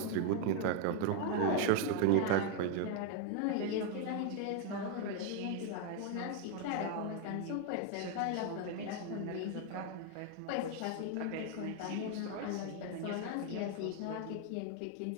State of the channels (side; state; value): both; different; correlation 0.01